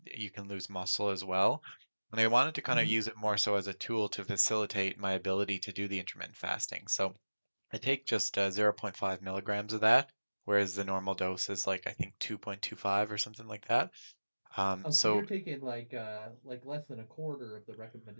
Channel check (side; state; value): both; inverted; correlation -1.00